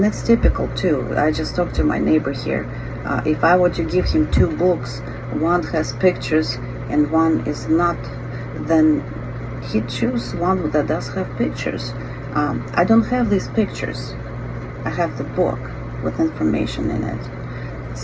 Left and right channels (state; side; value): identical; both; correlation 1.00